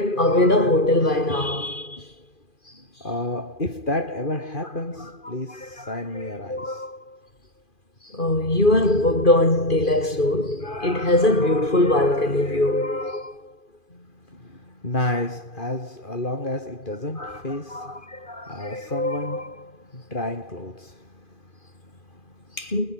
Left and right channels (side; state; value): right; late; 2.4 ms